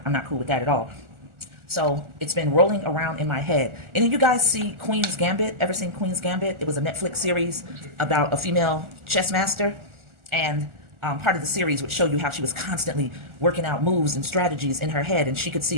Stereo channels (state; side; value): late; left; 1.4 ms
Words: not cool with that at all. So it's been rolling around in my head. Any of you guys see Queen's Gambit? Ever seen Queen's Gambit? It was a Netflix series about a female chess master. And part of the series would show you how she was constantly working out moves and strategies in her head. And she could see